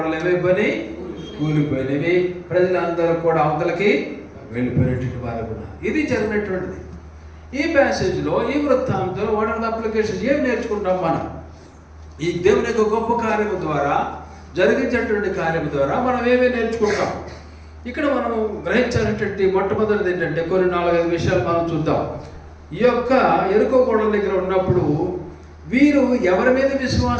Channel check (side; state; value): both; identical; correlation 1.00